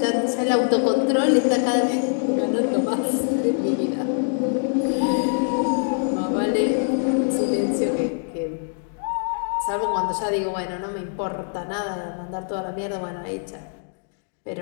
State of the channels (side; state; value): right; silent; 63 dB below the other